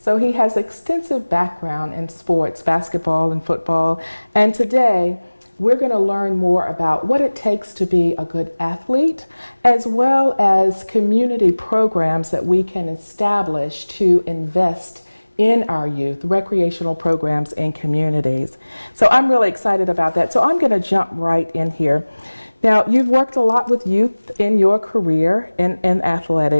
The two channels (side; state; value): both; inverted; correlation -1.00